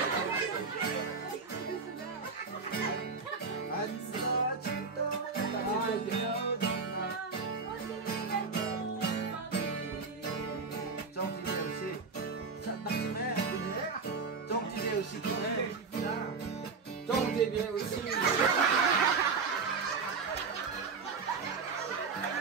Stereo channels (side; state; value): left; quieter; 4.8 dB